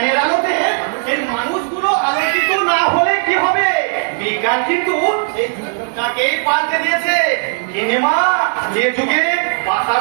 আলোকে এই মানুষগুলো আলোচিত না হলে কি হবে? বিজ্ঞান কিন্তু তাকেই পাল্টে দিয়েছে। গিনিমা, যে যুগে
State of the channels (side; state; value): left; silent; digital silence